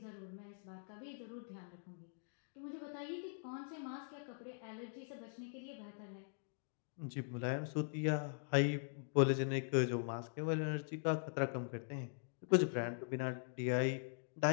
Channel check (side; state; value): right; silent; digital silence